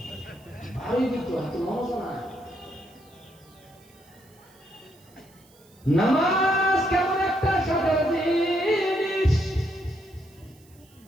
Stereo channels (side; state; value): right; noise; hiss, 29 dB below the sound